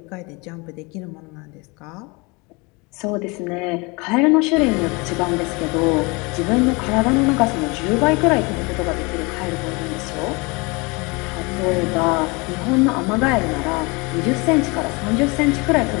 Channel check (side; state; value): right; quieter; 27.4 dB